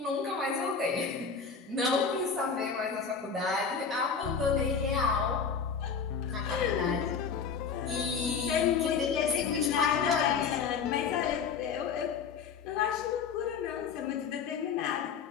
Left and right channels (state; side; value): quieter; right; 6.0 dB